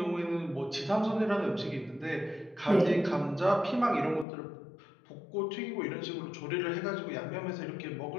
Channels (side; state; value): right; drops out; at 4.2 s